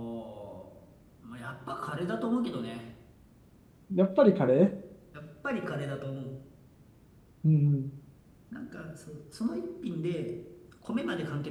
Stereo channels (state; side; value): identical; both; correlation 1.00